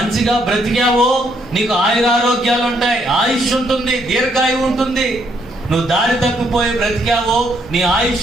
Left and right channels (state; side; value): normal; both; correlation 0.72